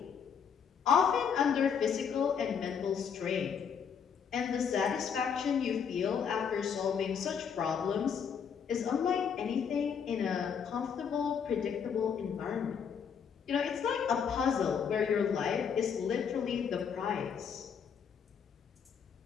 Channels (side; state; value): right; quieter; 7.1 dB